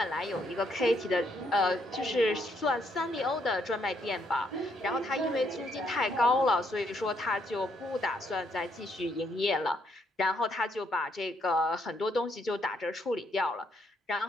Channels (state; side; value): normal; both; correlation 0.73